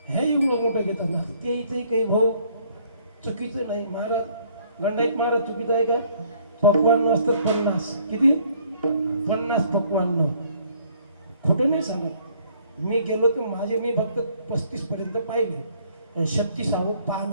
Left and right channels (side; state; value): both; inverted; correlation -0.62